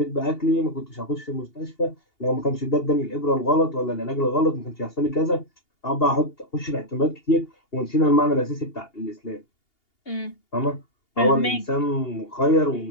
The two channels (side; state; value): right; late; 2.8 ms